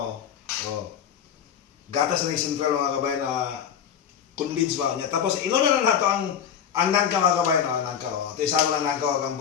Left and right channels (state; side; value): quieter; right; 8.5 dB